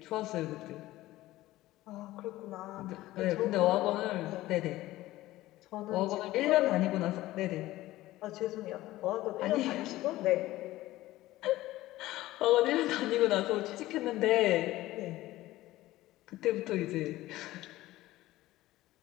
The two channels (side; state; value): right; quieter; 16.6 dB